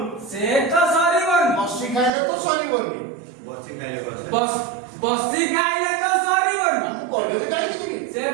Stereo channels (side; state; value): left; drops out; at 2.1 s